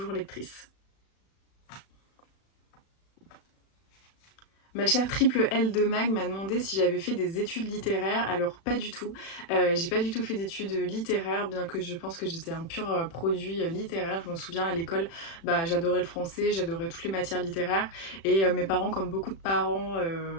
lectrice. Ma chère triple L de Mag m'a demandé si j'avais fait des études littéraires. Alors pas du tout. J'ai pas du tout fait d'études littéraires, bien que je pense que j'étais un pur produit littéraire. Je me souviens à l'école, bah, j'adorais le français, j'adorais toutes les matières littéraires. Et mes parents, comme beaucoup de parents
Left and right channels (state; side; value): late; right; 36 ms